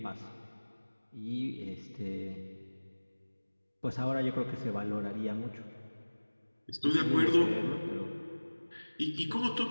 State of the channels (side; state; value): both; inverted; correlation -1.00